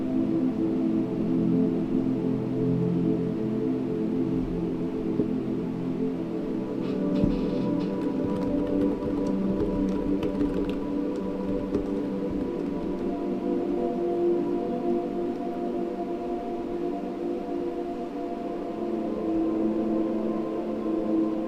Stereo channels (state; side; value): identical; both; correlation 1.00